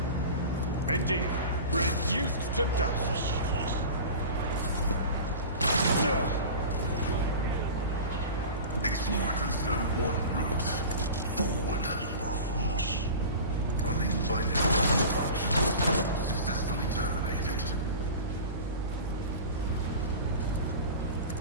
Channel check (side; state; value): both; inverted; correlation -0.34